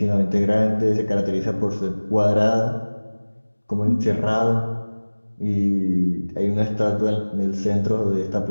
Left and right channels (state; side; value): inverted; both; correlation -1.00